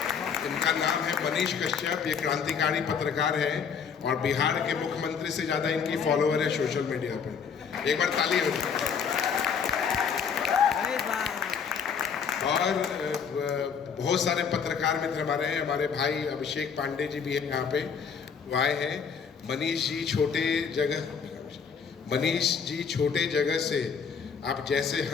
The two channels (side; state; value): right; quieter; 6.6 dB